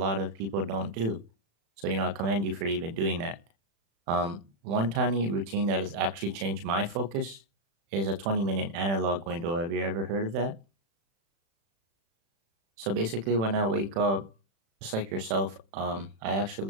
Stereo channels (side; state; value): left; late; 36 ms